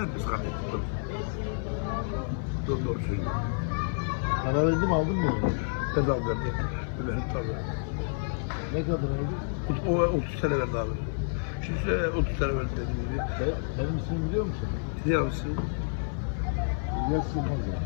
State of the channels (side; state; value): right; silent; digital silence